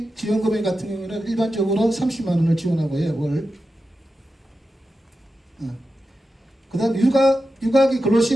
지원금액 같은 경우에는 일반적으로 30만 원을 지원하고요. 월. 그 다음 육아기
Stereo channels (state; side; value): normal; both; correlation 0.91